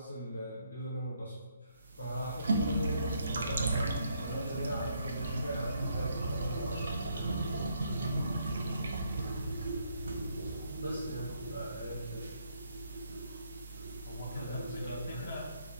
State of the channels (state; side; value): inverted; both; correlation -0.72